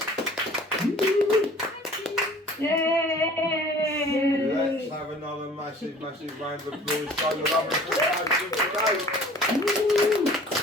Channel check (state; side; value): normal; both; correlation 0.48